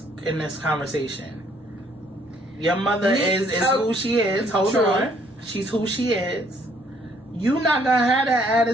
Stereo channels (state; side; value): normal; both; correlation 0.65